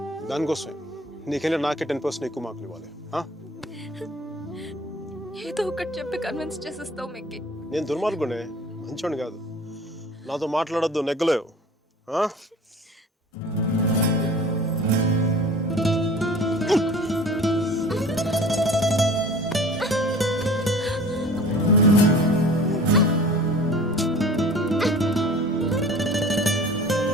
దానికోసమే నీకెళ్ళి నాకే 10% ఎక్కువ మార్కులు ఇవ్వాలి. ఏదో ఒకటి చెప్పి కన్విన్స్ చేసేస్తావు మిక్కీ. నేను దుర్మార్గునే, మంచోని కాదు. నాతో మాట్లాడొద్దు, నెగ్గలేవు.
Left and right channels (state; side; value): normal; both; correlation 0.44